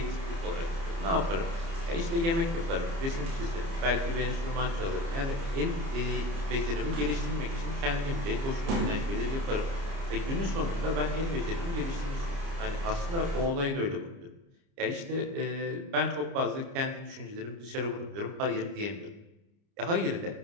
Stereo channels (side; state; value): left; late; 30 ms